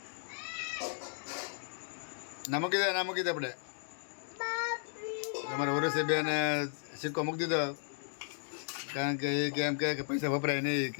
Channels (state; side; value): silent; right; digital silence